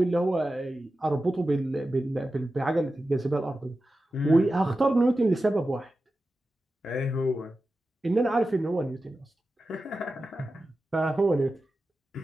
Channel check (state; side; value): normal; both; correlation 0.93